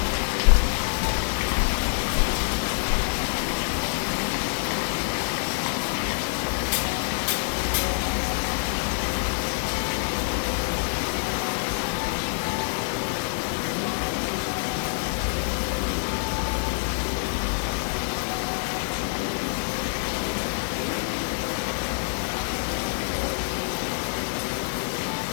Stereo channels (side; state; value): right; silent; digital silence